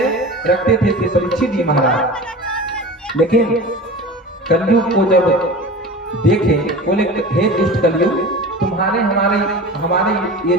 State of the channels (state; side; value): normal; both; correlation 0.34